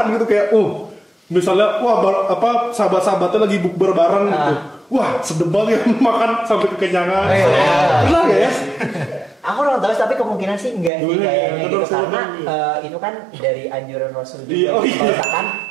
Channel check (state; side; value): drops out; left; at 10.9 s